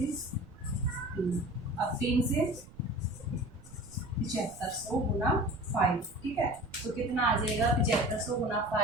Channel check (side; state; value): right; noise; rumble, 21 dB below the sound